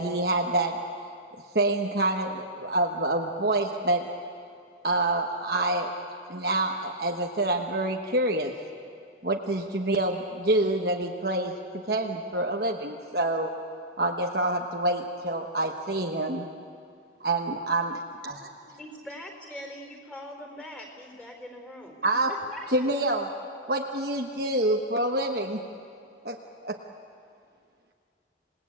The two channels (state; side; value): normal; both; correlation -0.17